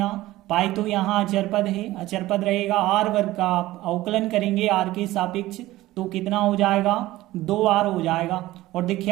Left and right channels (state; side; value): quieter; left; 16.8 dB